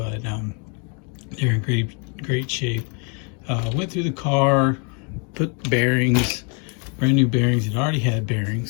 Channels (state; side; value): quieter; right; 37.1 dB